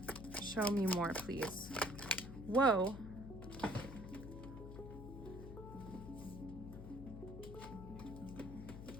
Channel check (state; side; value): noise; left; hum, 10 dB below the sound